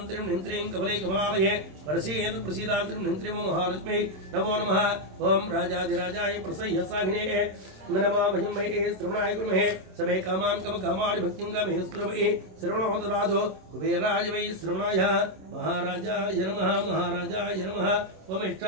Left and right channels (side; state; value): left; late; 27 ms